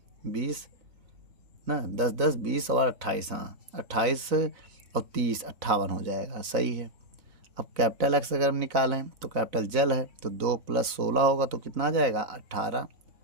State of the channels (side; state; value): left; late; 3.9 ms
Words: 20 ना, 10 10 20 और 28, हाँ 28 और 30 58 हो जाएगा, सही है। अब कैपिटल एक्स अगर हम निकालें तो कैपिटल जल है, तो 2 + 16 होगा, तो कितना आ जाएगा 18।